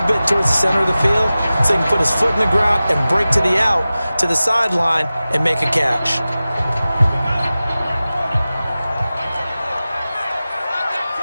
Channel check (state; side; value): inverted; both; correlation -0.96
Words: bit towards the center of the field so he can put his foot in the ground and break to the out, to the sideline, and make a catch.